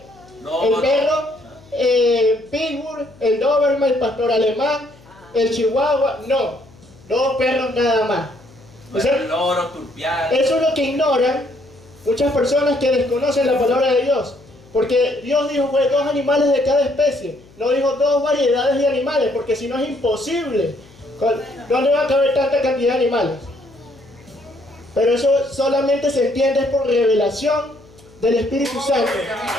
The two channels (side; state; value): left; noise; hum, 26 dB below the sound